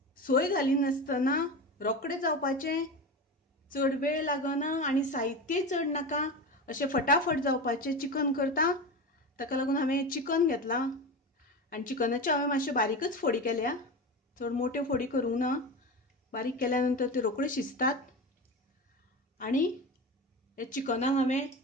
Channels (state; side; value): normal; both; correlation 0.24